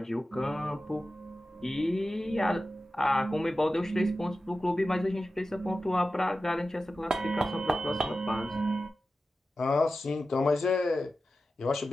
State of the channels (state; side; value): normal; both; correlation 0.93